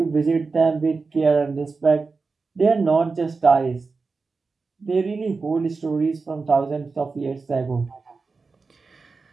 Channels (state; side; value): quieter; left; 4.3 dB